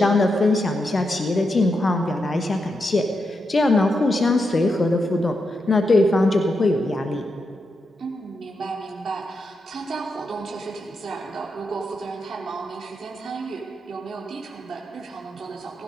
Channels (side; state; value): both; normal; correlation 0.85